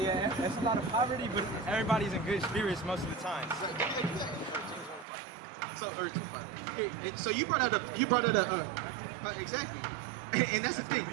it's a lot of poverty, but everybody's in good spirits most of the time. So you brought out a exactly, and that's the thing.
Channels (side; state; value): left; drops out; at 5.1 s